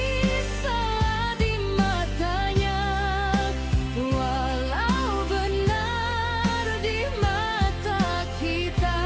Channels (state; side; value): identical; both; correlation 1.00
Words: salah di matanya, walau benar di mata kita.